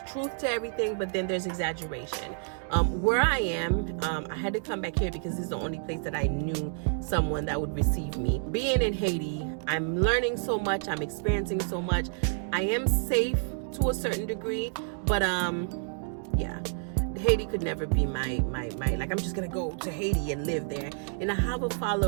truth to everything, but then there's exaggeration. Where I am, I had to come back here because this is the only place that I knew someone that would receive me. Being in Haiti, I'm learning so much. I'm experiencing so much. I am safe to a certain degree, but yeah. Haiti could never be my like, I'm just gonna go to Haiti and live there. And I have a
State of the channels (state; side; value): silent; left; 58 dB below the other